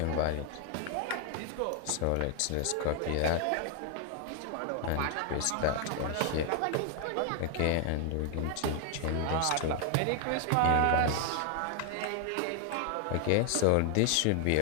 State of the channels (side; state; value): both; different; correlation 0.00